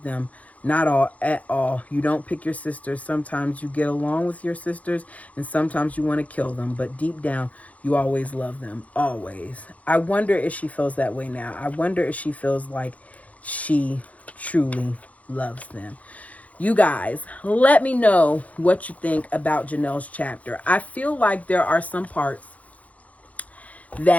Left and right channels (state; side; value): late; right; 0.069 ms